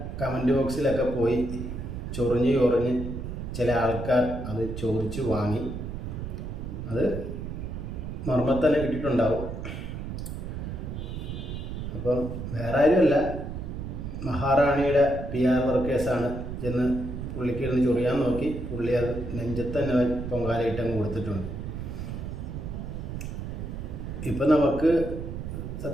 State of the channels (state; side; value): noise; right; rumble, 6 dB below the sound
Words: കമൻറ്റ് ബോക്സിലൊക്കെ പോയി ചൊറിഞ്ഞ് ചില ആൾക്കാർ അത് ചോദിച്ചു വാങ്ങി. അത് മർമ്മത്തന്നെ കിട്ടിയിട്ടുണ്ടാവും. അപ്പം വേറെ ആരുമല്ല, മഹാറാണിയുടെ PR വർക്കേഴ്സാണ് ചെന്ന് പുള്ളിക്ക് ഇരുന്ന് ചൊറിയാൻ നോക്കി. പുള്ളി അത് നെഞ്ചത്ത് തന്നെ പൊങ്കാലയിട്ടങ്ങ് കൊടുത്തിട്ടുണ്ട്. ഇപ്പം നമുക്ക്